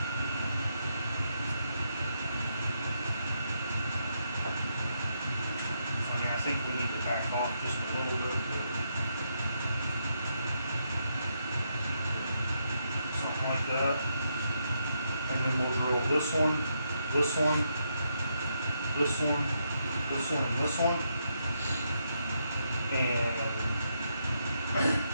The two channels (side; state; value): both; inverted; correlation -0.79